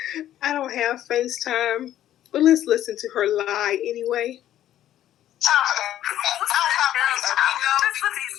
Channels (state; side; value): quieter; right; 12.2 dB